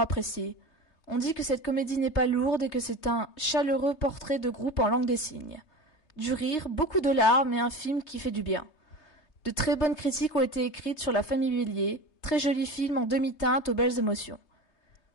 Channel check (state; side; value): late; right; 3.2 ms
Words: On dit que cette comédie n'est pas lourde et que c'est un chaleureux portrait de groupe en langue des signes. Du rire, beaucoup de larmes et un film qui fait du bien. De très bonnes critiques ont été écrites sur La famille Bélier, très joli film en demi-teinte aux belles émotions.